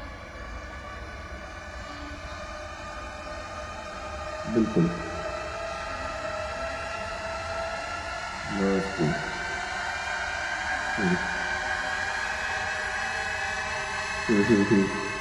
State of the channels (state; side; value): identical; both; correlation 1.00